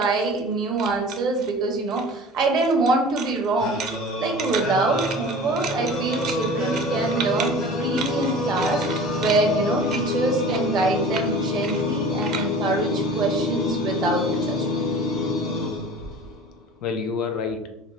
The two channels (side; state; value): both; normal; correlation 0.41